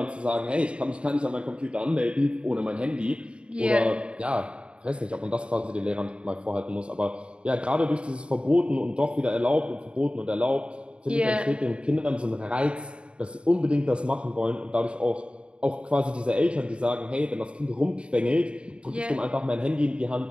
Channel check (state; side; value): late; left; 0.056 ms